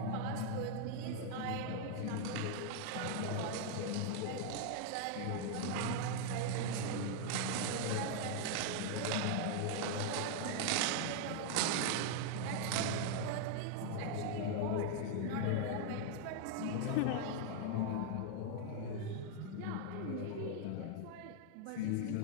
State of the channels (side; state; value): both; different; correlation 0.00